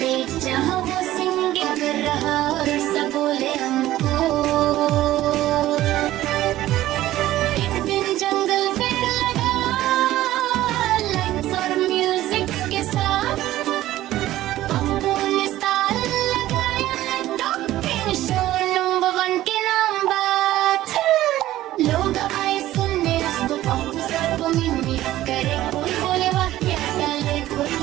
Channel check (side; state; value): left; quieter; 14.8 dB